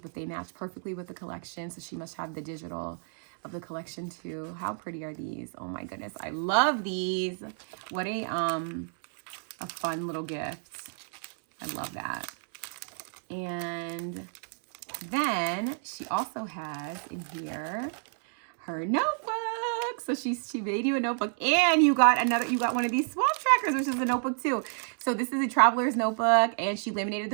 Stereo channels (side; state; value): left; silent; 57 dB below the other